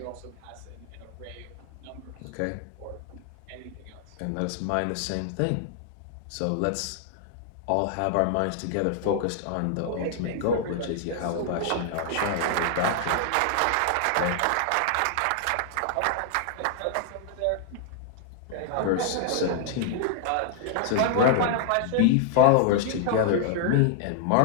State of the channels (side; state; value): both; different; correlation 0.00